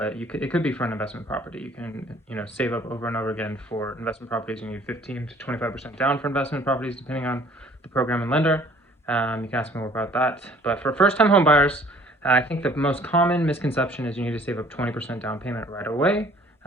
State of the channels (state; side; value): normal; both; correlation 0.55